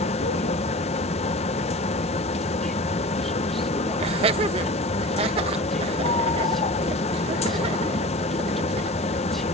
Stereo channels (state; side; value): normal; both; correlation 0.36